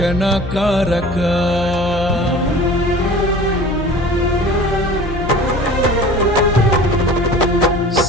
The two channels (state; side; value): noise; left; hum, 9 dB below the sound